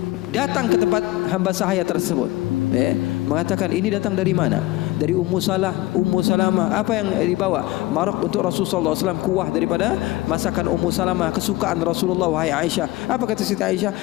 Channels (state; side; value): quieter; right; 18.5 dB